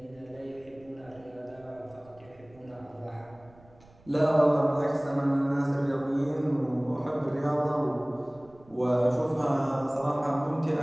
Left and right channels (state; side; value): noise; right; rumble, 27 dB below the sound